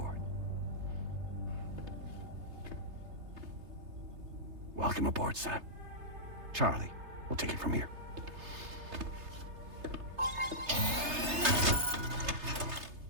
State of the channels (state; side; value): late; left; 3.3 ms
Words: Welcome aboard, Sam. Charlie, we'll take it from here.